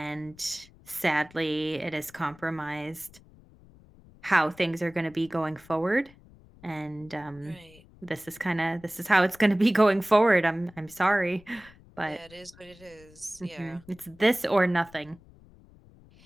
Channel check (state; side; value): noise; left; rumble, 25 dB below the sound